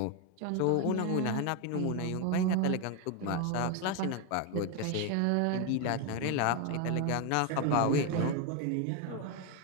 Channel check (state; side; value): different; both; correlation 0.02